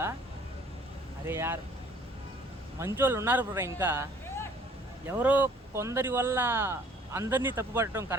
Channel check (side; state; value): both; normal; correlation 0.57